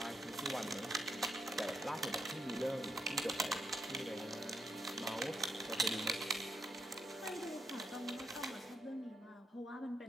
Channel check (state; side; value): normal; both; correlation 0.78